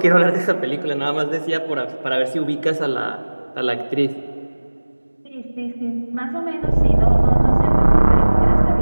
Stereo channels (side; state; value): both; inverted; correlation -1.00